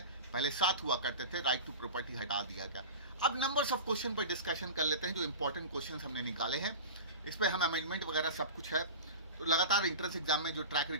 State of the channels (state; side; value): inverted; both; correlation -0.31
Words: पहले 7 हुआ करते थे, राइट टू प्रॉपर्टी हटा दिया गया। अब नंबर्स ऑफ क्वेश्चन पर डिस्कशन कर लेते हैं, जो इंपॉर्टेंट क्वेश्चन हमने निकाले हैं, इस पर हम अमेंडमेंट वगैरह सब कुछ है। तो लगातार एंट्रेंस एग्जाम में जो ट्रैक